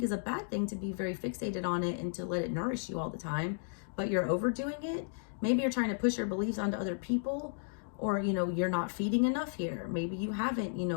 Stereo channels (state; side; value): silent; right; digital silence